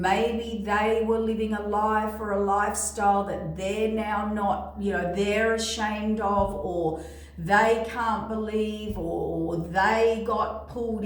they were living a life or a lifestyle that they're now not, they're ashamed of, or they can't believe, or they got pulled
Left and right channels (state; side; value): identical; both; correlation 1.00